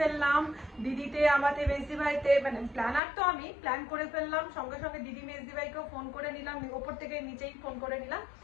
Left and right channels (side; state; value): right; drops out; at 3.0 s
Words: দিদিতে, আমাদের মেজদি ভাইতে, মানে প্ল্যানার তো আমি, প্ল্যান করে ফেললাম সঙ্গে সঙ্গে দিদি মেজদি ভাইকেও ফোন করে নিলাম, ওপর থেকে নিচেই ফোন করে নিলাম